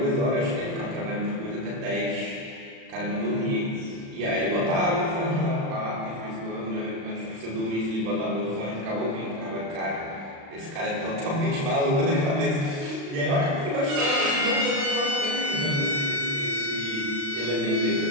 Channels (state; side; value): late; left; 36 ms